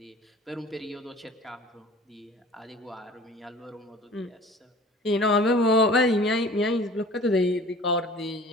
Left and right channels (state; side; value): normal; both; correlation 0.45